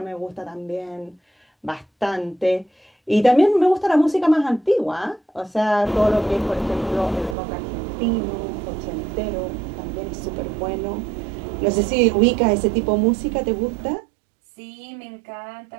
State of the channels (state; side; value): drops out; left; at 7.4 s